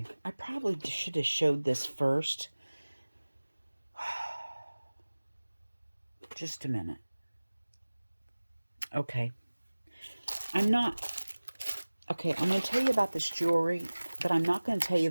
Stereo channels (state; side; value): inverted; both; correlation -1.00